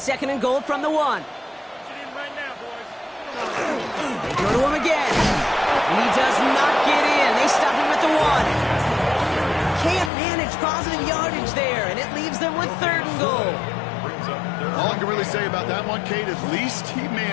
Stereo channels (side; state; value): right; drops out; at 10.1 s